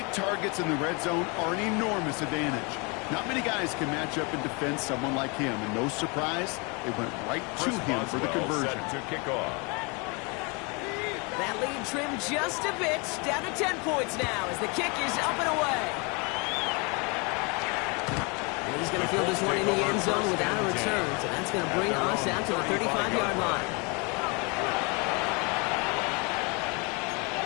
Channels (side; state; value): right; quieter; 30.6 dB